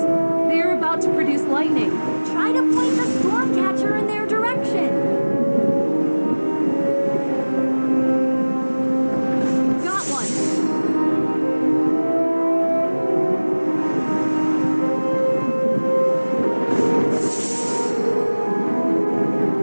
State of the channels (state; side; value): inverted; both; correlation -1.00